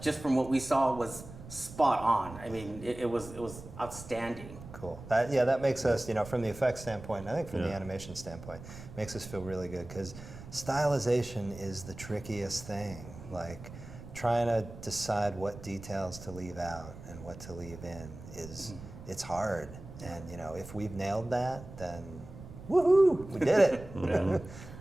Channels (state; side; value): noise; right; rumble, 14 dB below the sound